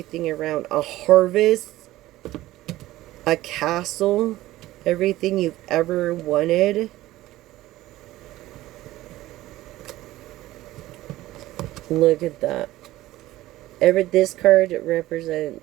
around. A harvest, a castle, everything you've ever wanted. Look at that. This card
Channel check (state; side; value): quieter; left; 16.3 dB